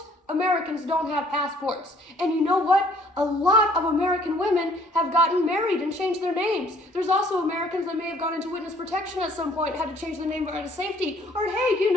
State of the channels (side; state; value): both; normal; correlation 0.59